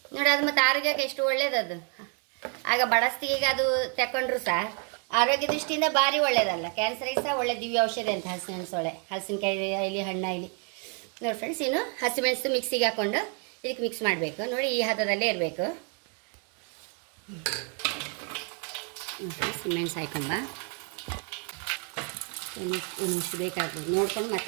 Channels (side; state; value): left; quieter; 39.5 dB